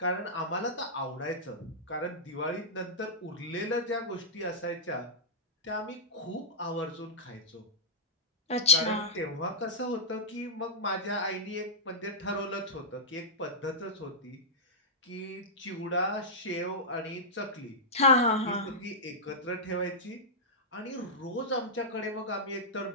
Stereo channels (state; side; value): normal; both; correlation -0.10